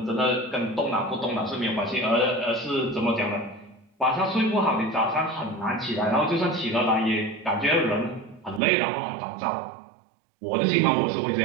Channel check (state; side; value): drops out; left; at 8.6 s